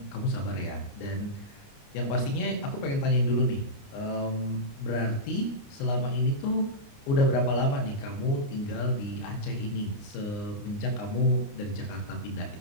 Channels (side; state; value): right; late; 29 ms